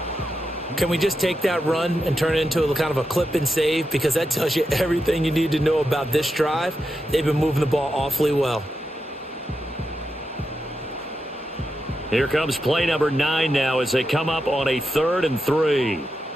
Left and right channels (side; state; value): both; normal; correlation 0.87